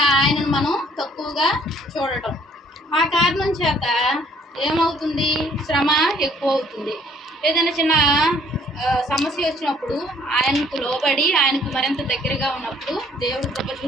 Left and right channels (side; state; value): both; normal; correlation 0.61